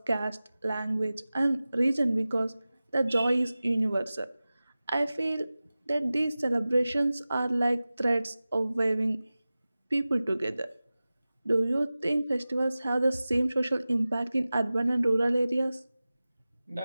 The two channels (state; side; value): inverted; both; correlation -0.96